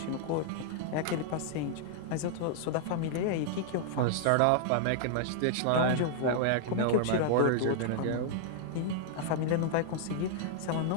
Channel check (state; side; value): different; both; correlation -0.01